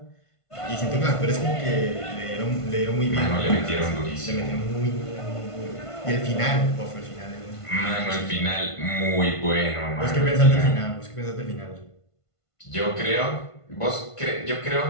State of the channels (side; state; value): right; late; 1.5 ms